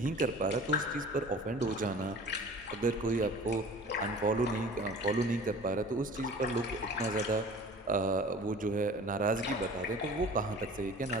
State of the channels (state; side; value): normal; both; correlation 0.44